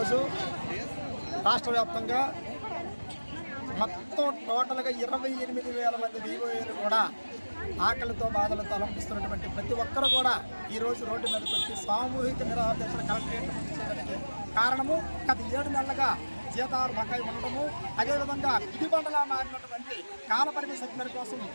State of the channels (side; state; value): both; inverted; correlation -1.00